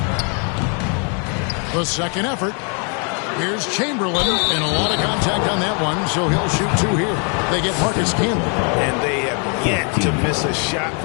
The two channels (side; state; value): right; quieter; 38.1 dB